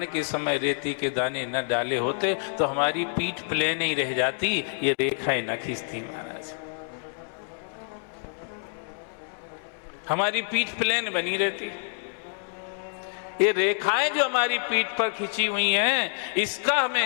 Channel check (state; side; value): silent; right; digital silence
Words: के समय रेती के दाने न डाले होते तो हमारी पीठ प्लेन ही रह जाती, ये रेखाएं न खींचती महाराज, हमारी पीठ प्लेन बनी रहती। ये रेखाएं जो हमारी पीठ पर खींची हुई हैं, इसका